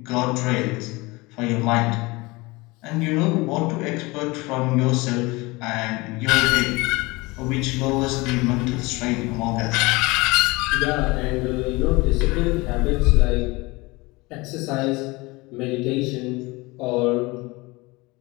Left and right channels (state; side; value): quieter; right; 23.4 dB